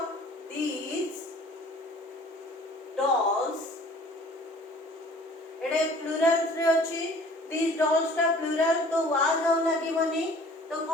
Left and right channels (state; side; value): normal; both; correlation 0.50